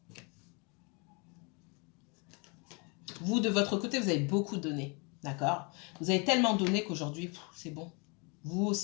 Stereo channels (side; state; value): right; quieter; 32.0 dB